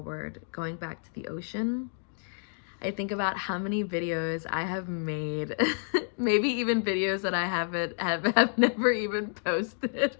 going back to the ocean. I think about how many videos I have made, maybe even videos that I have never even posted,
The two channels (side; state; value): right; silent; digital silence